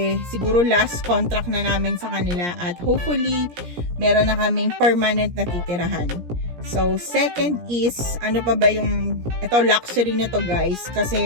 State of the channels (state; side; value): late; left; 17 ms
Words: siguro last contract na namin sa kanila at hopefully, meron na kaming permanent na titirahan. So, second is, ano pa ba ito luxury na to guys,